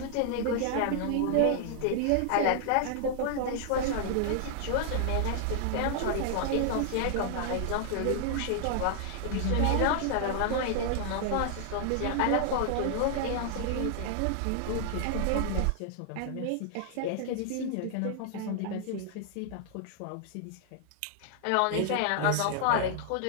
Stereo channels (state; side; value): different; both; correlation -0.01